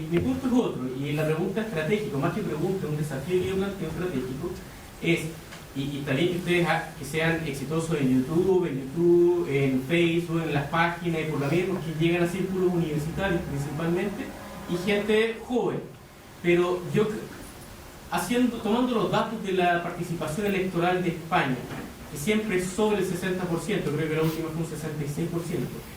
punto es otro, y la pregunta estratégica, más que pregunta, un desafío que yo planteo estratégico, es, y está bien que ustedes que sean exitosos en YouTube, en Facebook, en las páginas, y por la vida, porque llegan a círculos universitarios principalmente, y gente joven. Pero yo, tomando los datos de la participación electoral de España, que siempre es sobre el 60%, creo que la última fue un 66%.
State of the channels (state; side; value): identical; both; correlation 1.00